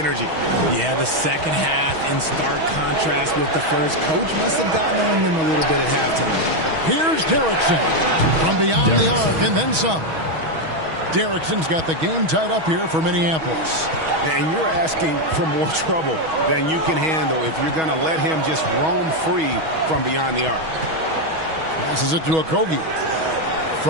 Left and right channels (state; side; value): late; left; 6.3 ms